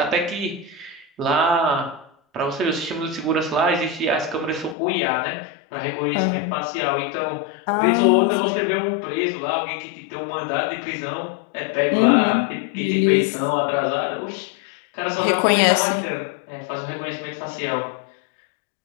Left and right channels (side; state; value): right; drops out; at 4.8 s